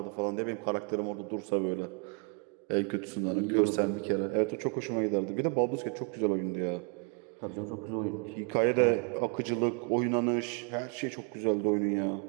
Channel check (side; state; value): left; quieter; 35.5 dB